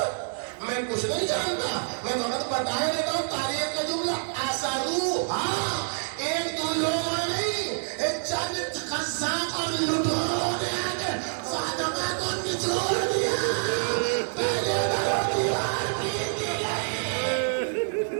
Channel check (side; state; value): left; silent; digital silence